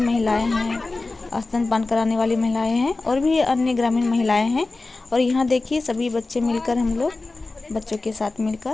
हैं, स्तनपान कराने वाली महिलाएं हैं और भी अन्य ग्रामीण महिलाएं हैं। और यहाँ देखिए सभी बच्चे मिलकर, हम लोग बच्चों के साथ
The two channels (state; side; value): quieter; right; 3.4 dB